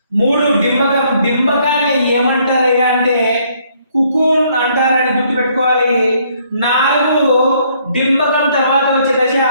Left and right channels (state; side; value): inverted; both; correlation -0.67